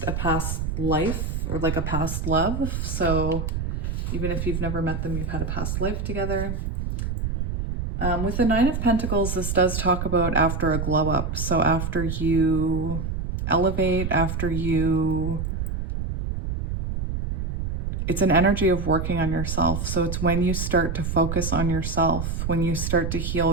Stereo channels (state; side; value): noise; right; rumble, 3 dB below the sound